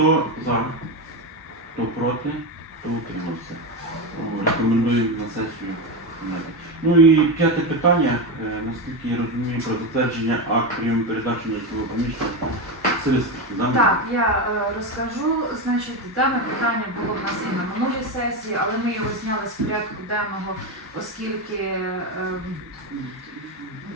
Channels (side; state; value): both; normal; correlation 0.14